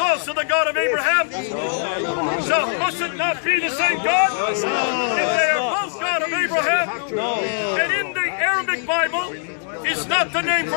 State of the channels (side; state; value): right; silent; digital silence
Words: the God of Abraham? So must it not be the same God? If they are both God of Abraham, and in the Arabic Bible is not the name